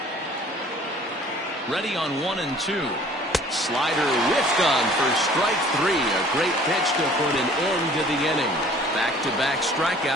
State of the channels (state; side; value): normal; both; correlation 0.52